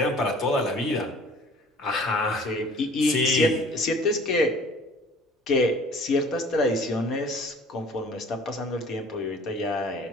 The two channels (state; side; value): normal; both; correlation 0.49